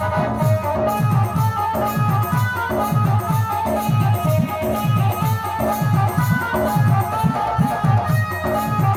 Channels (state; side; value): identical; both; correlation 1.00